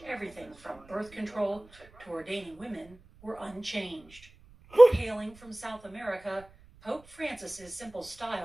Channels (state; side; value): noise; right; rumble, 25 dB below the sound